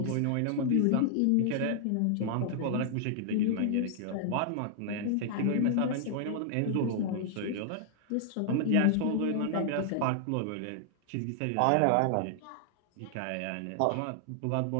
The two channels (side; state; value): both; different; correlation 0.00